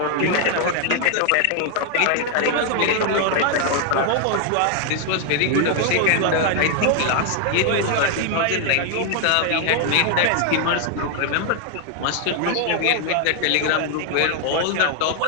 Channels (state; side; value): different; both; correlation 0.00